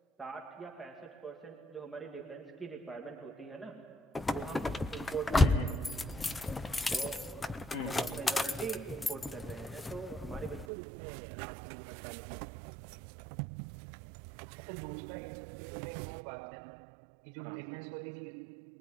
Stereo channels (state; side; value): drops out; left; at 10.7 s